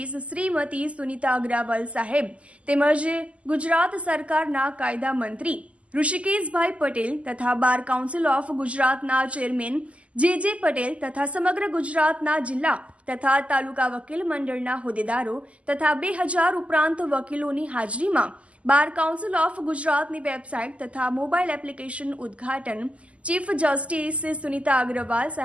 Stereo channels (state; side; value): late; left; 0.062 ms